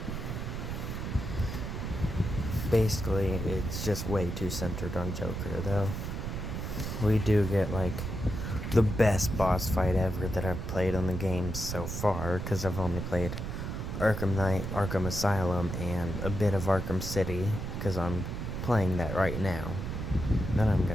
Basically, it's just way too centered on Joker, though. We do get, like, the best boss fight ever that I've played on the game so far, because I've only played Arkham Knight, Arkham Asylum, and a bit of Arkham City, because I'm playing that right now. Then I'm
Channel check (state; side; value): noise; right; rumble, 4 dB below the sound